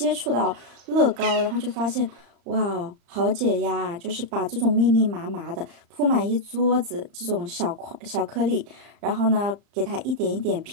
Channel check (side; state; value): left; late; 35 ms